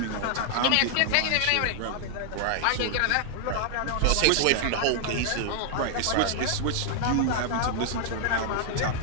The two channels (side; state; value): both; different; correlation 0.00